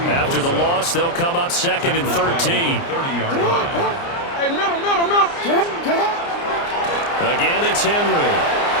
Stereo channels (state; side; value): late; right; 29 ms